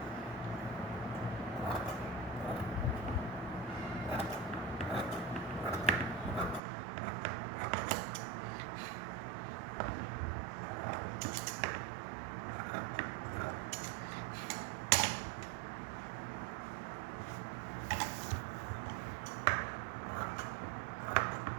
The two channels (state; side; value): drops out; left; at 6.6 s